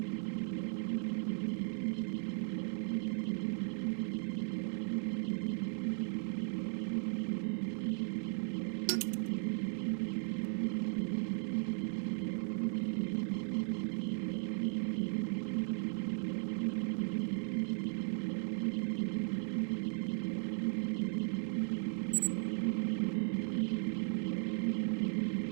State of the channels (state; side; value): silent; left; 53 dB below the other